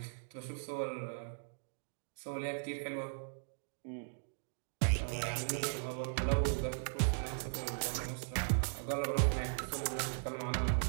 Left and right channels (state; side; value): silent; left; digital silence